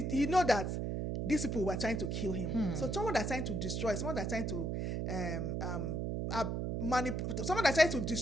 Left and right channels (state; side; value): noise; right; hum, 1 dB below the sound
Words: know that these people were trying to kill him. So someone that's trying to destroy, someone that's trying to someone that's trying to